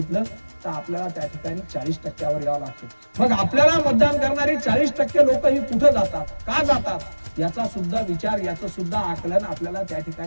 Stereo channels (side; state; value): both; inverted; correlation -1.00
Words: तर आपल्याला त्या ठिकाणी 40%वर यावं लागतं. मग आपल्याला मतदान करणारी 40% लोक ही कुठे जातात, का जातात याचा सुद्धा विचार, याचं सुद्धा आकलन आपल्याला त्या